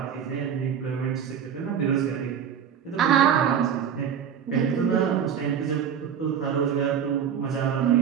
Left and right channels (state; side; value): quieter; left; 8.1 dB